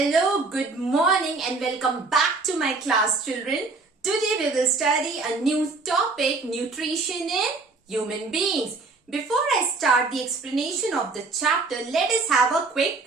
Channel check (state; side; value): quieter; left; 3.8 dB